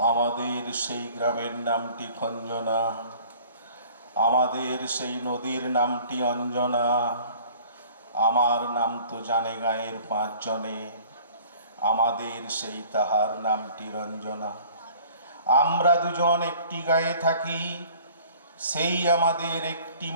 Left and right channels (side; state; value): both; inverted; correlation -0.50